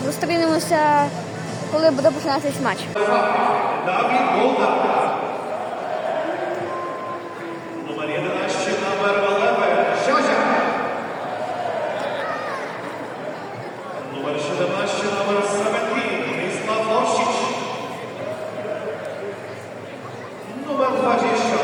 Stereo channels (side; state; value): both; identical; correlation 1.00